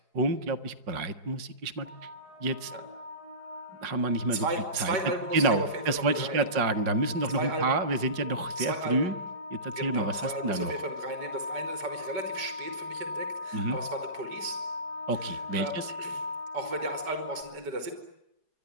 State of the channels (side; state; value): left; late; 4.9 ms